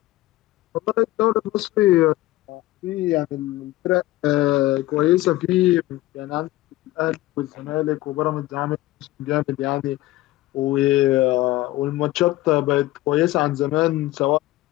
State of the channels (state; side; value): quieter; right; 17.1 dB